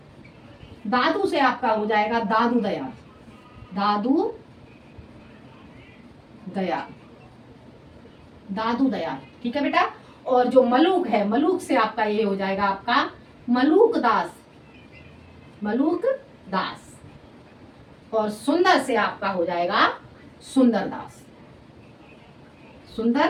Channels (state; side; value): identical; both; correlation 1.00